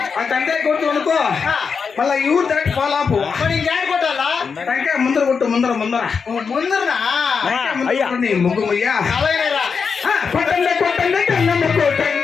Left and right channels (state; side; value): quieter; right; 5.7 dB